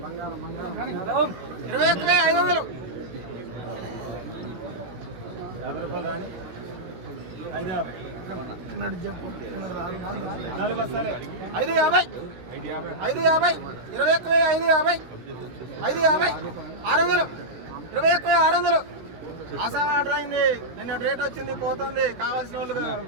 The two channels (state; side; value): late; left; 16 ms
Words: 21,500 50 రూపాయలు రాని 550 చెప్పు 4 బస్తాలే 550 21,550 600 21,600 ఆసాం ఆర్డర్ అయింది. నిన్న రేట్ వచ్చింది పోతుంది. కావాల్సిన వాళ్ళు